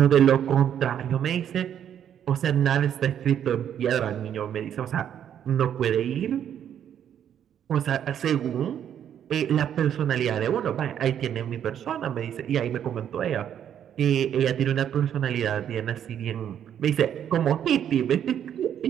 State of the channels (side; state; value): left; quieter; 9.5 dB